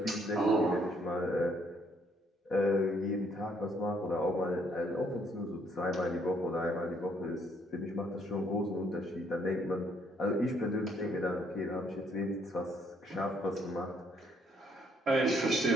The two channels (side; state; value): both; normal; correlation 0.68